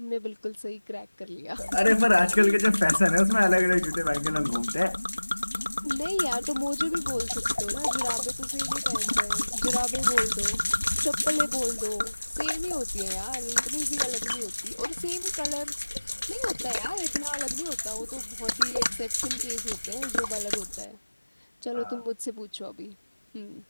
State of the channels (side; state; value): both; inverted; correlation -1.00